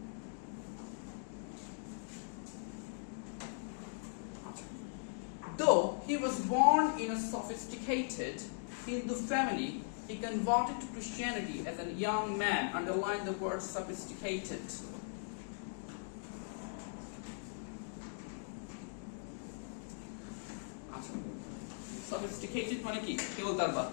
Though he was born in a sophisticated Hindu family, he converted to Christianity as a young man. Underline the word sophisticated. Sophisticated মানে কি? কে বলতে পারবা?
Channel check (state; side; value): silent; right; digital silence